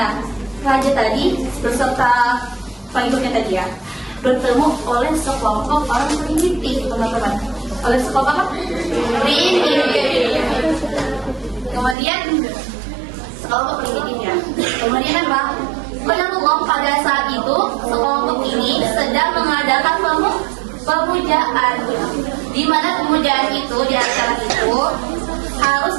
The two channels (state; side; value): drops out; left; at 12.0 s